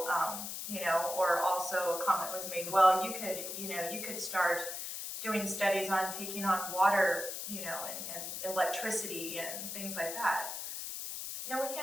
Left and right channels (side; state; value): left; noise; hiss, 6 dB below the sound